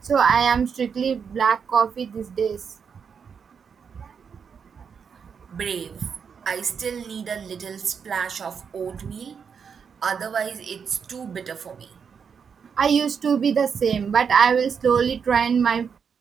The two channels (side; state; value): left; quieter; 6.6 dB